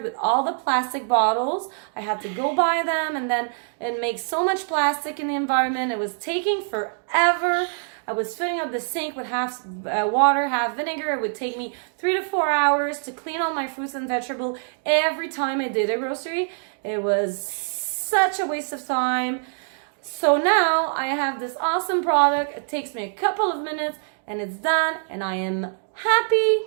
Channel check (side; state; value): left; silent; digital silence